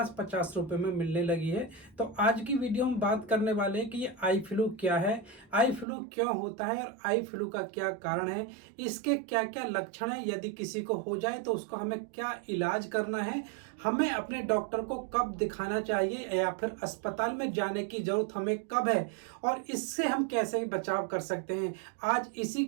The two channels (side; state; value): left; drops out; at 5.9 s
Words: रुपए में मिलने लगी है। तो आज की वीडियो में बात करने वाले हैं कि ये आई फ्लू क्या है, आई फ्लू क्यों होता है और आई फ्लू का क्या कारण है, इसके क्या क्या लक्षण है, यदि किसी को हो जाए तो उसको हमें क्या इलाज करना है, हमें अपने डॉक्टर को कब दिखाना चाहिए या फिर अस्पताल में जाने की जरूरत हमें कब है और इससे हम कैसे बचाव कर सकते हैं। आज इसी